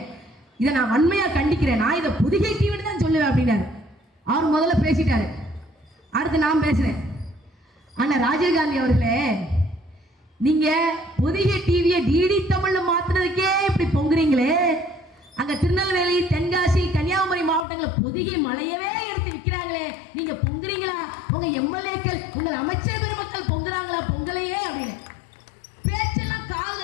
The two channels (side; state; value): right; drops out; at 17.7 s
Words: இதை நான் வன்மையா கண்டிக்கிறேன், நான் இதை பொதிகை டிவின்னு தான் சொல்லுவேன் அப்படின்னாரு. அவர் முதல்ல பேசிட்டாரு. அடுத்து நான் பேசுறேன். ஆனா ராஜீவ்காந்தி அவர்களே, நீங்க பொதிகை டிவியை டிடி தமிழ்ல மாத்துறதுக்கே இப்படி பொங்குறீங்களே, அங்க திருநெல்வேலி, தென்காசி, கன்னியாகுமரி மாவட்டங்களில் பொதிகை மலையவே எடுத்து விற்கிறாங்களே, நீங்க பொங்குறீங்களா? உங்க எம்எல்ஏக்கள், உங்கள் அமைச்சர் பெருமக்கள் பொங்குறாங்களா? பொங்கலையே அப்படின்னு பேச்செல்லாம் கால